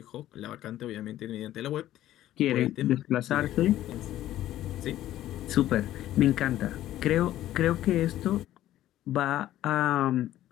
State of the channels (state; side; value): quieter; right; 13.5 dB